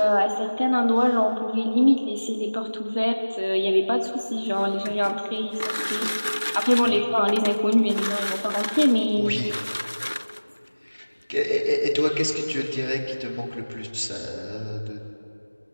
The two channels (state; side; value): inverted; both; correlation -1.00